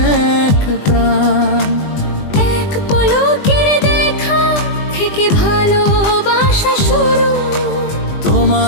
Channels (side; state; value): right; late; 20 ms